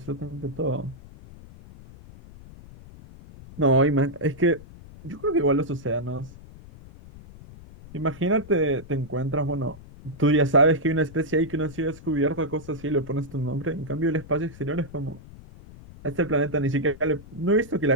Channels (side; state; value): left; noise; rumble, 18 dB below the sound